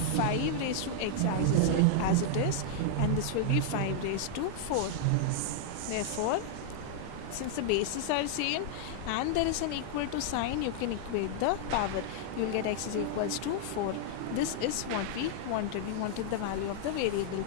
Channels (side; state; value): both; different; correlation -0.01